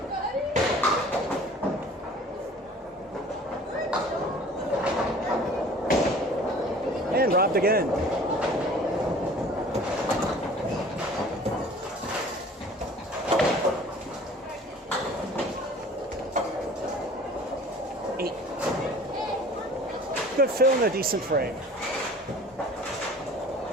And robbed again. good fill and a decent frame.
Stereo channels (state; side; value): normal; both; correlation 0.47